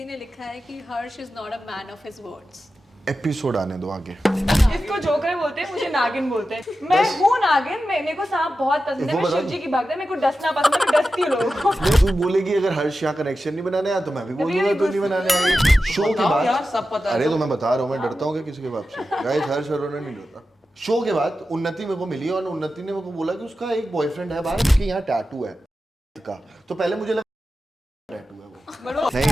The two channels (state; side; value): normal; both; correlation 0.92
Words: ने लिखा है कि Harsh is not a man of his words. Episode आने दो आगे। इसको जोकर बोलते हैं, मुझे नागिन बोलते हैं। मैं हूँ नागिन, मेरे को सांप बहुत पसंद है, मैं शिव जी की भक्त है, मेरे को डसना पसंद है, मैं डसती हूँ लोगों को। तू बोलेगी अगर हर्ष यहाँ कनेक्शन नहीं बनाने आया तो मैं भी बोल दूंगा तू नहीं बनाने आई। शो के बाद यार सब पता है। अरे तो मैं बता रहा हूँ मैं डरता हूँ क्या किसी के बाप से। गाइस हर्ष अरोड़ा नहीं डरता। शो के बाद उन्नति मेरे को मिली और उन्नति ने मेरे को बोला कि उसका एक बॉयफ्रेंड है बाहर, उसके यहाँ टैटू है का। तो पहले मुझे लगा टैटू है वो।